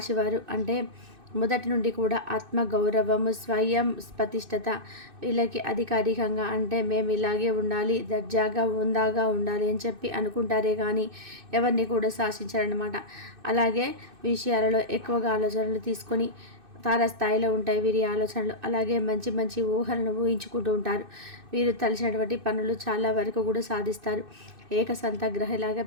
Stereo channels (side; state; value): left; late; 2.6 ms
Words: అంటే మొదటి నుండి కూడా ఆత్మగౌరవము, స్వయం ప్రతిష్టత వీళ్ళకి అధికారికంగా అంటే మేము ఇలాగే ఉండాలి, దర్జాగా ఉందాగా ఉండాలి అని చెప్పి అనుకుంటారే కానీ ఎవరిని కూడా శాసించారనమాట. అలాగే విషయాలలో ఎక్కువగా ఆలోచనలు తీసుకొని తారాస్థాయిలో ఉంటాయి వీరి ఆలోచనలు. అలాగే మంచి మంచి ఊహలను ఊహించుకుంటూ ఉంటారు. వీరు తలచినటువంటి పనులు చాలా వరకు కూడా సాధిస్తారు. ఏకసంతగ్రహలాగా